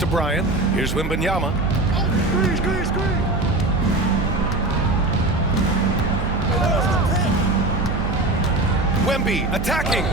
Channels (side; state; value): right; noise; hum, 5 dB below the sound